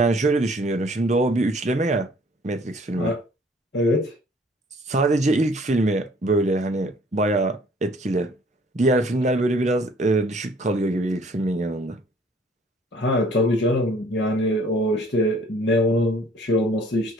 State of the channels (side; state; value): both; normal; correlation 0.57